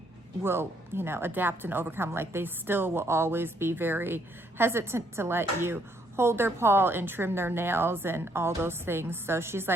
will, you know, adapt and overcome. Like, they still will always be very hesitant to let you hold their paw and trim their nails and all those things. So she's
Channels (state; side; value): normal; both; correlation 0.70